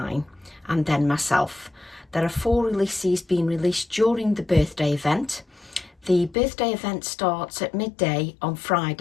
and then myself. There are 4 releases being released during the birthday event. The birthday event starts at midday on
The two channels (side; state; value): right; drops out; at 6.4 s